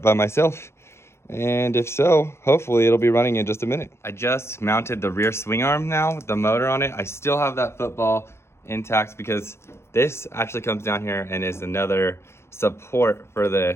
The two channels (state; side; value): late; right; 0.13 ms